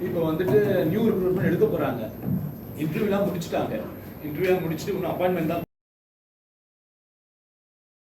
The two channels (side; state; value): both; identical; correlation 1.00